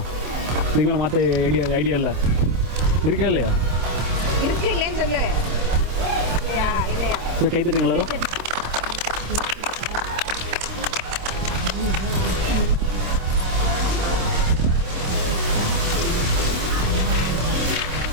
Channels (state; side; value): late; left; 26 ms